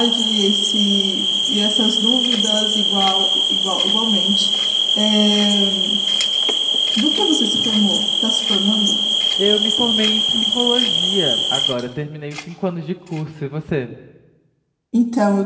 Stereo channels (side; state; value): both; identical; correlation 1.00